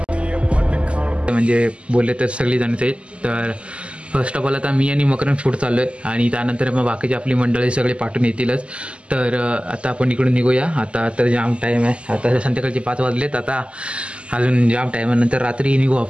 म्हणजे बोलले तर सगळी जणच आहेत. तर फर्स्ट ऑफ ऑल आता मी आणि मकरन फूड चाललो आहे आणि त्यानंतर मग बाकीची आपली मंडळी सगळे पाठवून येतीलच. तर आता आपण इकडून निघूया. आता तर जाम टाईम आहे, आता संध्याकाळचे 5 वाजलेत. आता अजून जाम टाईम आहे, नंतर रात्री निघू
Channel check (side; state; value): left; late; 0.055 ms